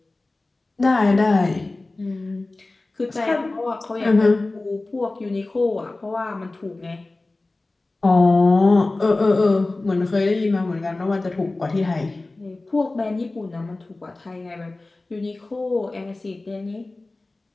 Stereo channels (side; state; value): right; quieter; 3.1 dB